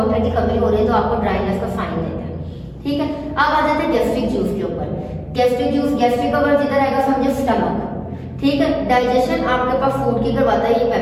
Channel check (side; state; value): both; identical; correlation 1.00